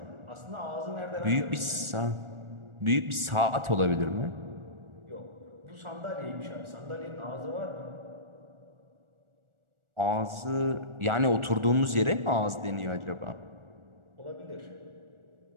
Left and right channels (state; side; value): late; left; 1.4 ms